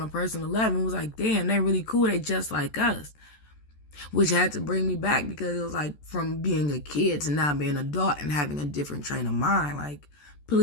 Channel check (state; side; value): late; right; 14 ms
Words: a personal level. And was like, damn, they're really cool. They just like us, which had to bring me back because it was like from being a kid to now being an adult and having a different train of mind. Like,